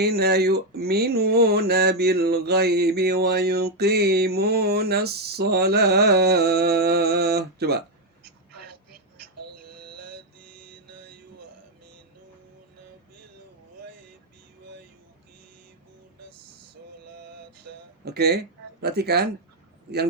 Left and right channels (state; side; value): normal; both; correlation 0.03